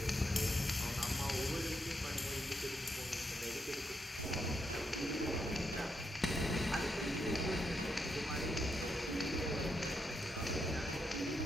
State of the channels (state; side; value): normal; both; correlation 0.81